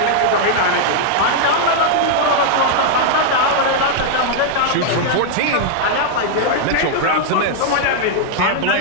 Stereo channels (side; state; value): both; different; correlation -0.01